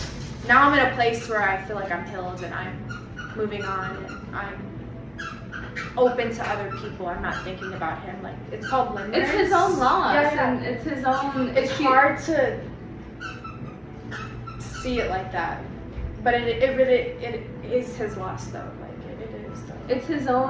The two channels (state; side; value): identical; both; correlation 1.00